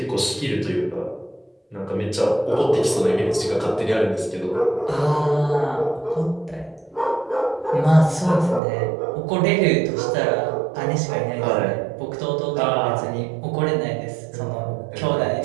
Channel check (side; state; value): left; drops out; at 8.6 s